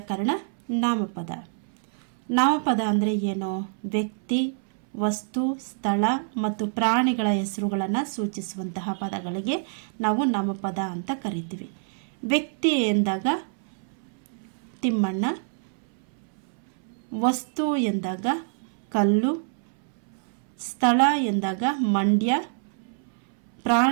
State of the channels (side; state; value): left; silent; 61 dB below the other